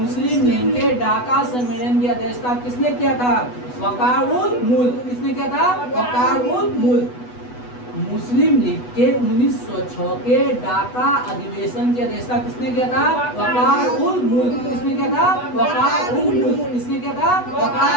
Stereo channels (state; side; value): late; right; 8.1 ms